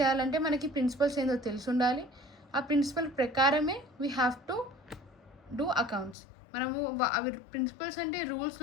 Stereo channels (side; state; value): right; drops out; at 6.2 s